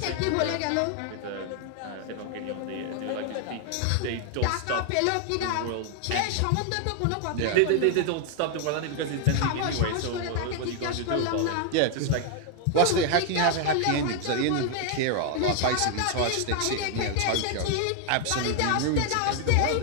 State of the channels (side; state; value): both; different; correlation 0.00